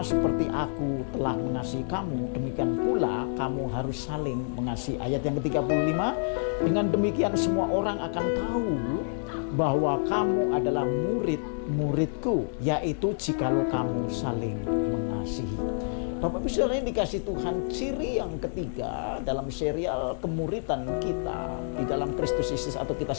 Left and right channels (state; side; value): silent; right; digital silence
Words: seperti aku telah mengasihi kamu, demikian pula kamu harus saling mengasihi. Ayat yang ke-35, dengan demikian semua orang akan tahu bahwa kamu adalah murid-muridku, yaitu jikalau kamu saling mengasihi. Bapak Ibu Saudara, ini dikasih Tuhan ciri yang ketiga dalam serial kemuritan kita di dalam Kristus Yesus, atau kita